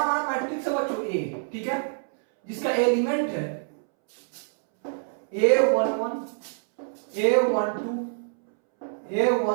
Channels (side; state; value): left; silent; 61 dB below the other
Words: मैट्रिक्स है बच्चों ए, ठीक है, जिसका एलिमेंट है A11, A12,